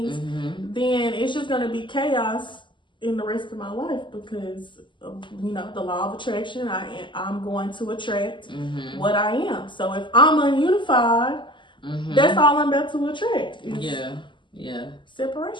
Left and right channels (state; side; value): late; right; 0.24 ms